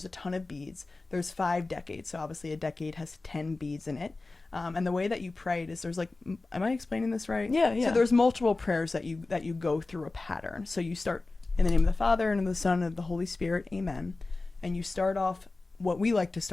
a ton of beads. There's 5 decades, so obviously a decade has 10 beads in it. And the way that you pray it is there's like, am I explaining this right? Yeah. So there's multiple prayers that you go through a pattern. So you start in the name of the Father, and of the Son, and of the Holy Spirit, amen. And you start off, what we like to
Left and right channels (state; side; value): quieter; right; 3.4 dB